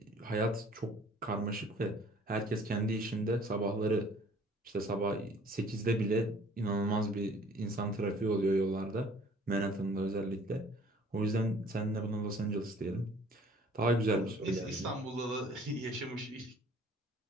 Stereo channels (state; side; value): normal; both; correlation 0.54